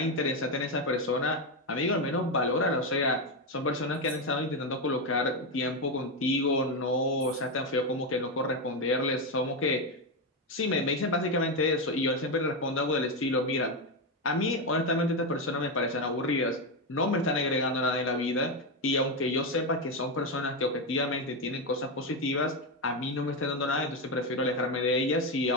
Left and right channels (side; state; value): both; normal; correlation 0.09